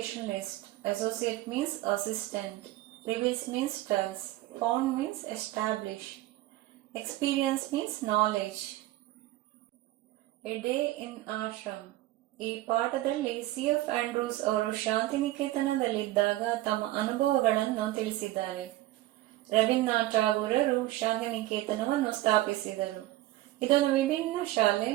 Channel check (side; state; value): left; quieter; 16.6 dB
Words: Associate means assistant. Reveals means tells. Found means establish. Experience means knowledge. A day in ashram. ಈ ಪಾಠದಲ್ಲಿ C F. Andrews ಅವರು ಶಾಂತಿನಿಕೇತನದಲ್ಲಿದ್ದಾಗ ತಮ್ಮ ಅನುಭವಗಳನ್ನು ತಿಳಿಸಿದ್ದಾರೆ. ರವೀಂದ್ರನಾಥ್ ಟಾಗೂರರು ಶಾಂತಿನಿಕೇತನವನ್ನು ಸ್ಥಾಪಿಸಿದರು. ಇದೊಂದು ವಿಭಿನ್ನ ಶಾಲೆ.